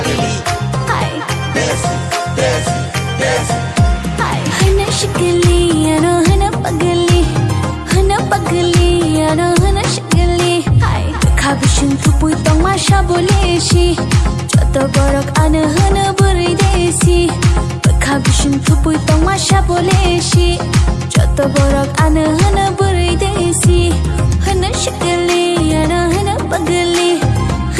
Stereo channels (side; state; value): both; identical; correlation 1.00